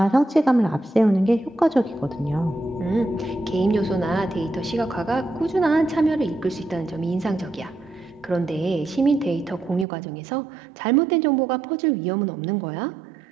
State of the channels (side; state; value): left; drops out; at 9.9 s